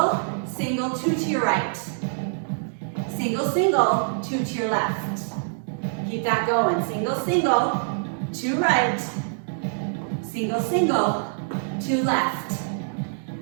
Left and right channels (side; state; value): left; silent; digital silence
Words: single, 2 to your right. Single, single, 2 to your left. Keep that going. Single, single, 2 right. Single, single, 2 left.